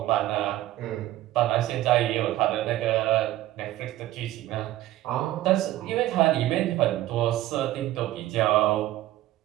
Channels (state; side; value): quieter; left; 15.2 dB